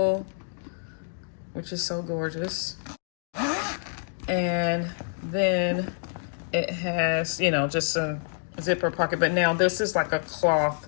which is so gorgeous. And then it has, just a zipper pocket, but now this is like a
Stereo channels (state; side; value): silent; right; digital silence